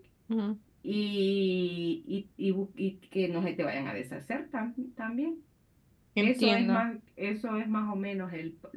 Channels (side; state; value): both; identical; correlation 1.00